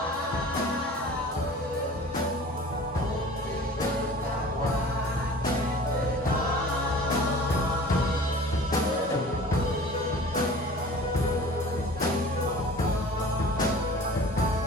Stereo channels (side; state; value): both; normal; correlation 0.43